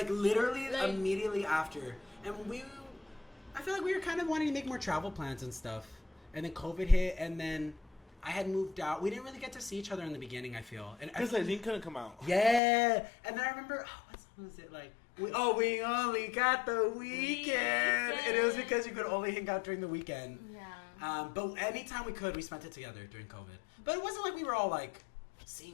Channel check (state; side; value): drops out; right; at 12.6 s